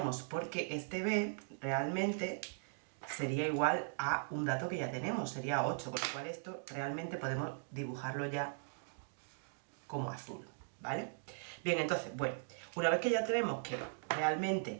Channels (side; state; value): left; silent; digital silence